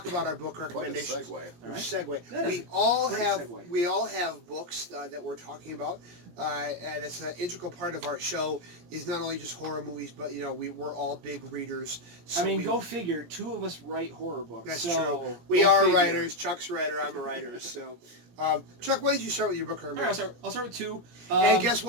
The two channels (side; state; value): left; late; 17 ms